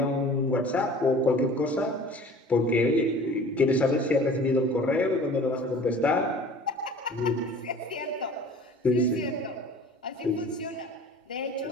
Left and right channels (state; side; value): normal; both; correlation 0.45